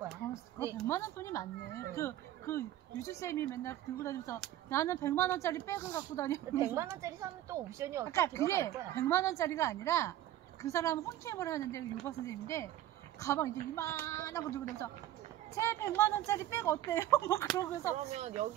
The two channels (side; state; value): left; quieter; 13.4 dB